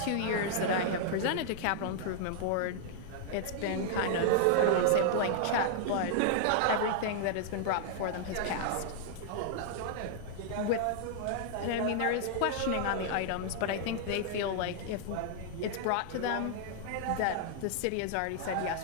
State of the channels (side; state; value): both; different; correlation -0.01